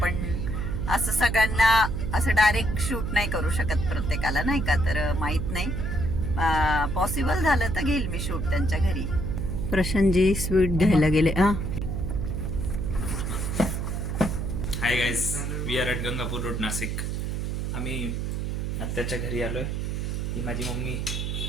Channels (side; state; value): right; noise; hum, 2 dB below the sound